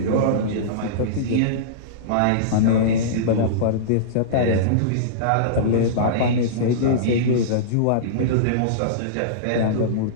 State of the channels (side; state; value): both; different; correlation -0.04